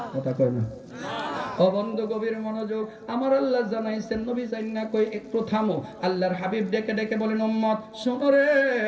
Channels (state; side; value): identical; both; correlation 1.00